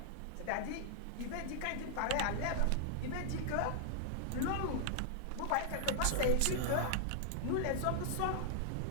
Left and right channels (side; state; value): both; different; correlation -0.01